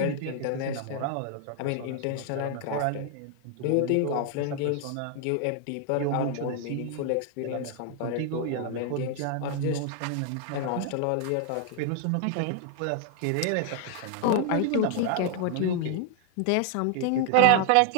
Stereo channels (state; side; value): different; both; correlation 0.00